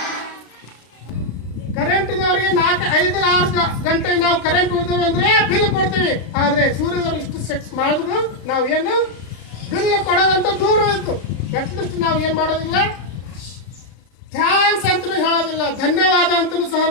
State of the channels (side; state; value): right; late; 33 ms